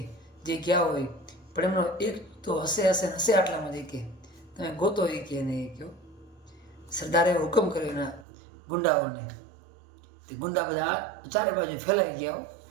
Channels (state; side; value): drops out; left; at 8.2 s